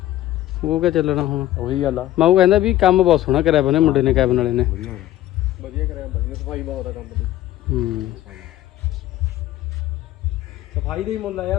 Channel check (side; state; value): right; quieter; 14.1 dB